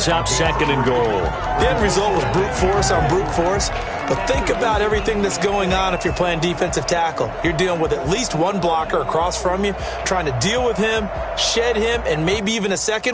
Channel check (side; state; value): both; identical; correlation 1.00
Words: up second and goal. The end result was brute force on brute force. But think about everything that's going on if you're playing defensive tackle. You're dealing with at least one blocker across from you, trying to deal with him, shed him, and maybe even a